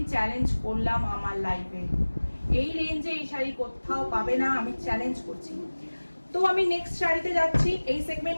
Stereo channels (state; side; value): inverted; both; correlation -1.00